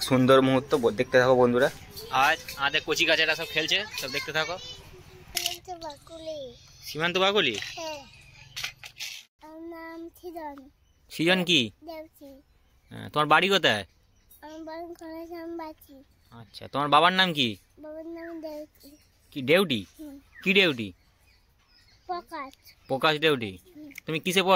সুন্দর মুহূর্ত দেখতে থাকো বন্ধুরা। আজ আমাদের কচি কাচারা সব খেলছে, সব দেখতে থাকো। সীমান্ত বাকুলি। সৃজন কি? তোমার বাড়ি কোথায়? আচ্ছা, তোমার বাবার নাম কি? কি দেউটি? কি দেউটি? প্রকাশ দেউটি। তুমি কিসে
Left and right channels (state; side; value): identical; both; correlation 1.00